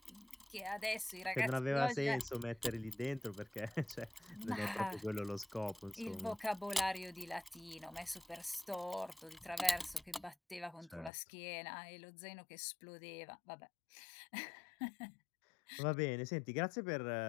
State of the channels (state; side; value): drops out; right; at 11.1 s